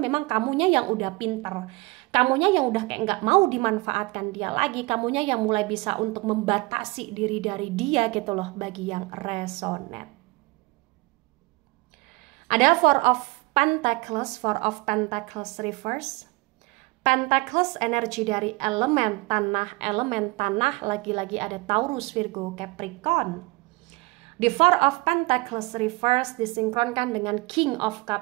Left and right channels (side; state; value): left; quieter; 23.7 dB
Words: memang kamunya yang udah pinter, kamunya yang udah kayak nggak mau dimanfaatkan dia lagi, kamunya yang mulai bisa untuk membatasi diri dari dia gitu loh bagi yang resonate. Ada Four of Pentacles reverse. Pentacles energi dari elemen tanah lagi-lagi ada Taurus, Virgo, Capricorn. The Four of Pentacles reverse disinkronkan dengan King of